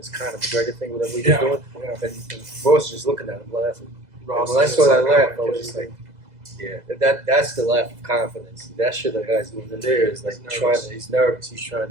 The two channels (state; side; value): late; left; 2.0 ms